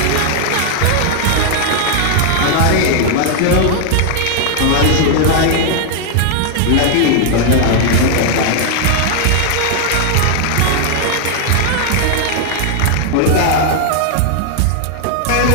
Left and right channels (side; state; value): both; different; correlation 0.00